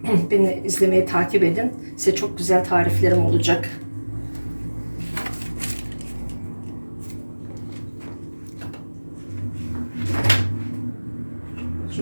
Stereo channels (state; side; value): inverted; both; correlation -1.00